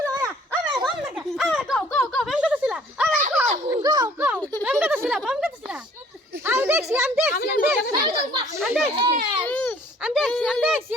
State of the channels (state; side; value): normal; both; correlation 0.56